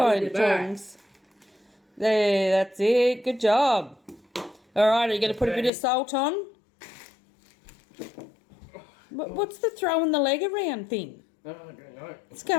tongs? There, that's it. Good job. All right, are you going to put a bit of salt on? What's the throwing the leg around thing? Oh, I don't know. What's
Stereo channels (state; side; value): drops out; right; at 5.7 s